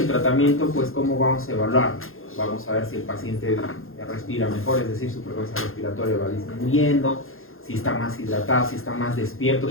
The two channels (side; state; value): right; late; 0.61 ms